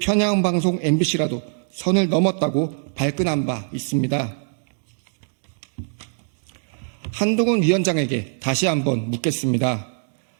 MBC라도 선을 넘었다고 발끈한 바 있습니다. 한동훈 위원장에게 다시 한번 묻겠습니다.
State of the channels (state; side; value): silent; left; digital silence